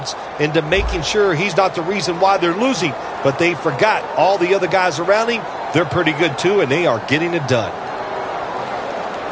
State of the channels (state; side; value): identical; both; correlation 1.00